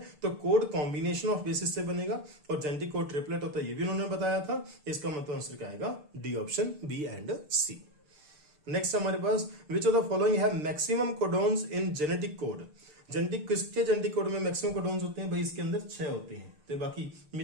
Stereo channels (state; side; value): late; left; 6.7 ms